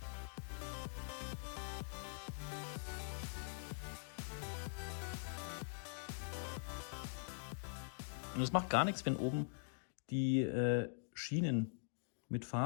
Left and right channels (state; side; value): silent; right; digital silence